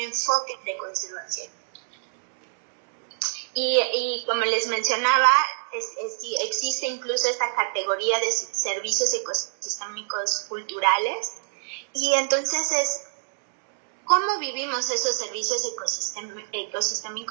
de conservación. Y como les mencionaba, existe incluso esta categoría de servicios ecosistémicos culturales, y entonces es cómo vivimos esos servicios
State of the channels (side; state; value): left; silent; 61 dB below the other